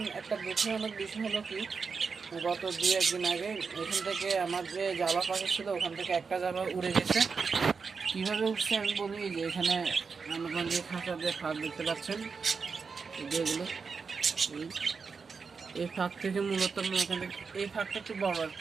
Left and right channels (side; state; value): left; quieter; 5.2 dB